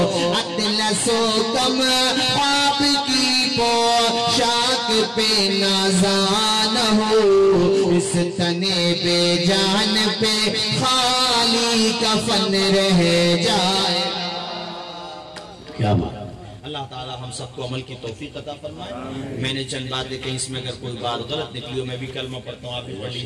اطلس و کم آپ کی پوشاک پہ نازان ہو. اس تنے پہ جان پہ خالی کفن رہ جائے. کیا بات. اللہ تعالی ہم سب کو عمل کی توفیق عطا فرمائے. میں نے چند باتیں کہیں، اس میں اگر کوئی بات غلط نکلی ہو، میں بھی کلمہ پڑھتا ہوں، آپ بھی پڑھ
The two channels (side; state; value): both; identical; correlation 1.00